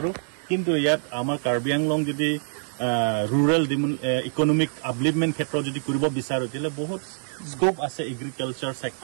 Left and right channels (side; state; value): left; silent; digital silence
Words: কিন্তু ইয়াত আমাৰ কাৰ্বি আংলং যদি rural economic upliftment ক্ষেত্ৰত যদি কৰিব বিচাৰো তেলে বহুত স্কোপ আছে এগ্ৰিকালচাৰ